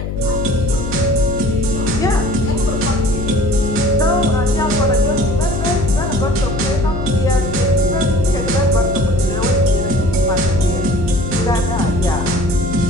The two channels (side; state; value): left; noise; hum, 5 dB below the sound